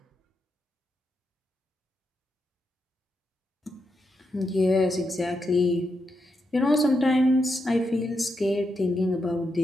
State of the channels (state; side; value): normal; both; correlation 0.84